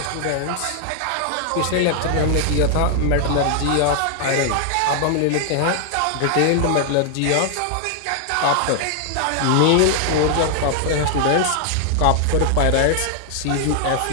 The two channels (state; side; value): different; both; correlation 0.00